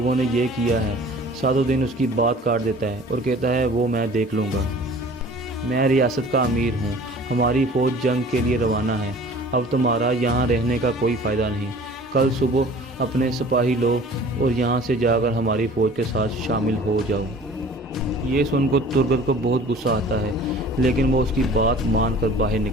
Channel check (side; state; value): both; normal; correlation 0.47